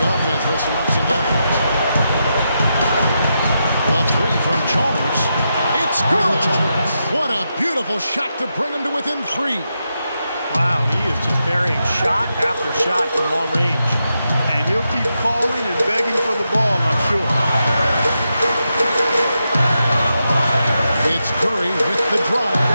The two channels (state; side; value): inverted; both; correlation -0.86